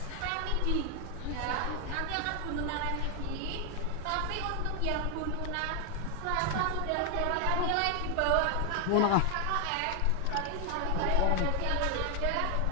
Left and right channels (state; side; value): different; both; correlation 0.00